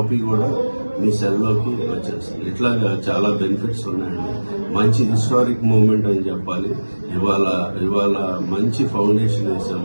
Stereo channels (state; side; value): inverted; both; correlation -1.00